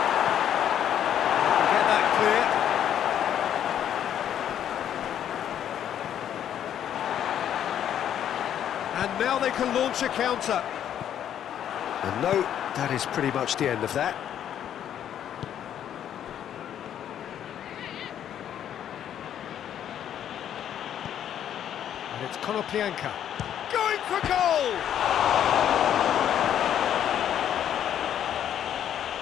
Get that clear. And now they can launch a counter. And no, that is pretty much the end of that. And it's Konoplyanka going for goal!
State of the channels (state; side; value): quieter; right; 10.0 dB